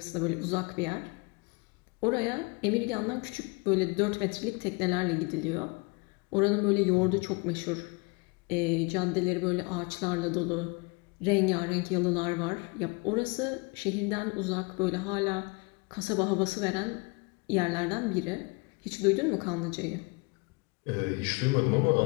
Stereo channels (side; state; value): right; quieter; 29.0 dB